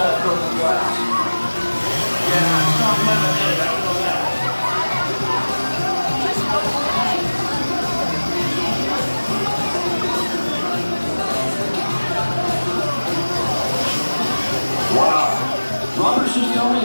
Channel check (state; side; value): inverted; both; correlation -1.00